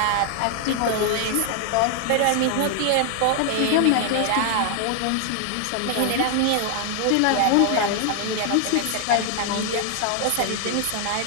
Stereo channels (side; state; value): both; different; correlation 0.00